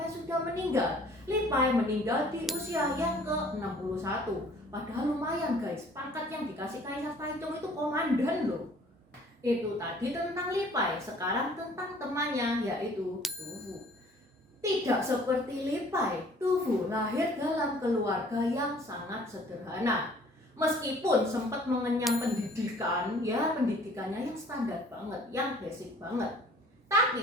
sudah meninggal. Li Bai meninggal di usia yang ke-61. Padahal lumayan guys, pangkat yang dikasih Kaisar Taizong itu komandan loh. Itu tadi tentang Li Bai, sekarang tentang temannya yaitu Tu Fu. Tidak seperti Li Bai, Tu Fu lahir dalam keluarga yang sangat sederhana. Meskipun sempat mengenyam pendidikan, ya pendidikannya yang standar banget, yang basic banget.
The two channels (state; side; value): normal; both; correlation 0.54